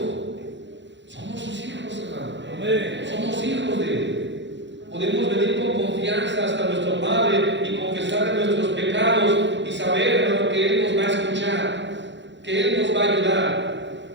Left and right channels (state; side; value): late; left; 0.53 ms